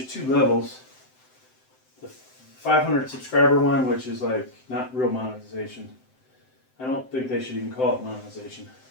2 levels. The 500 subscriber one, which is like not real monetization. I don't think they should even call it monetization.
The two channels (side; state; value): right; late; 7.8 ms